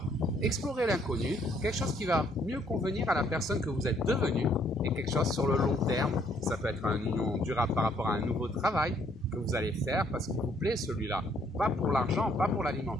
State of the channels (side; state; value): both; normal; correlation 0.67